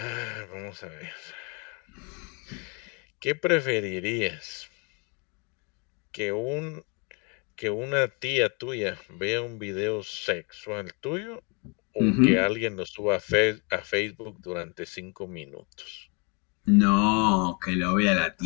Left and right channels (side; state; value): right; quieter; 33.6 dB